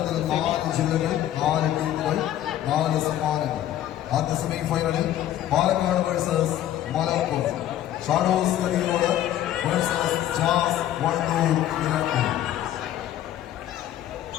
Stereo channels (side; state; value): right; quieter; 12.3 dB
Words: 4 ജില്ലകൾ 4 ടീമുകൾ 4 സമ്മാനങ്ങൾ. ആദ്യ സെമിഫൈനലിൽ Palakkad versus Malappuram, shadows കരിയോട് versus jazz Wandoor Nilambur.